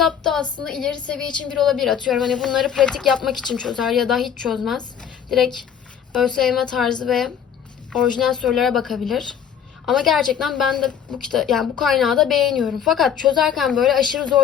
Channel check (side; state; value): right; quieter; 8.3 dB